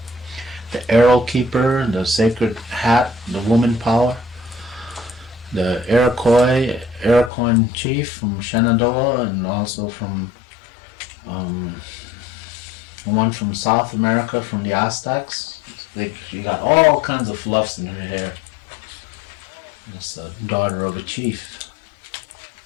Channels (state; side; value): drops out; right; at 7.3 s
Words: the arrow keeper, the sacred hat, the woman power, the Iroquois chief from Shenandoah, and also from one from South America, from the Aztecs. She got all kinds of fluffs in her hair. It's a daughter of a chief.